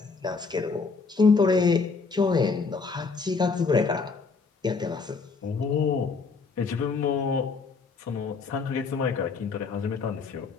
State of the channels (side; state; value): right; quieter; 4.6 dB